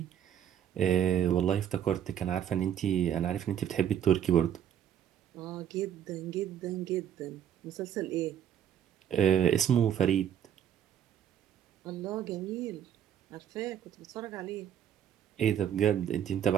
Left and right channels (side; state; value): left; quieter; 9.7 dB